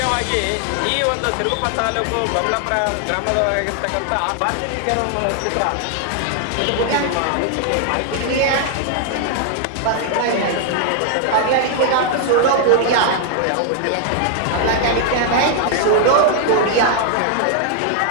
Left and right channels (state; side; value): different; both; correlation 0.00